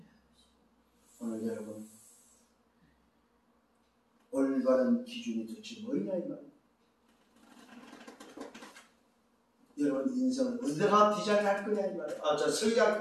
오늘 여러분 올바른 기준이 도대체 뭐냐 이 말이에요. 여러분 인생을 어디다가 디자인할 거냐 이 말이에요. 저 설계할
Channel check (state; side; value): identical; both; correlation 1.00